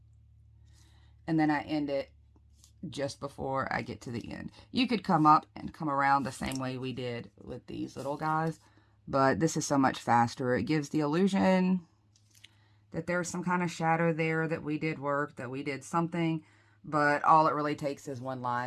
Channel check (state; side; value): identical; both; correlation 1.00